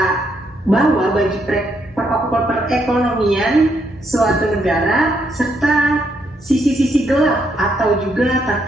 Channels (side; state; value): both; normal; correlation 0.76